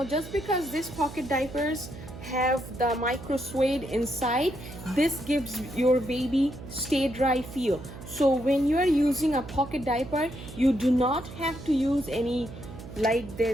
just because these pocket diapers have the micro suede inside, this gives your baby stay dry feel. So when you are using a pocket diaper, you do not have to use any like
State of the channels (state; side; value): noise; right; hum, 13 dB below the sound